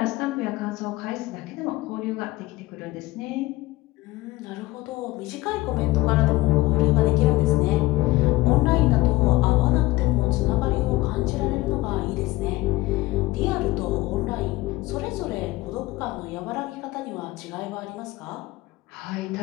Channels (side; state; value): right; quieter; 19.1 dB